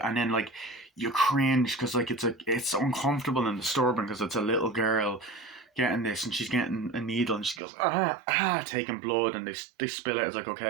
and then like you cringe because like it's uncomfortable and disturbing because it's a little girl getting this and she's getting a needle and she goes taking blood and they spill it. It's like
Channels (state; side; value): drops out; left; at 7.6 s